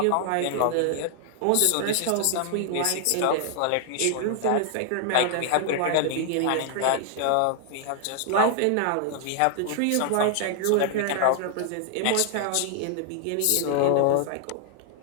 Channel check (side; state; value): both; different; correlation 0.00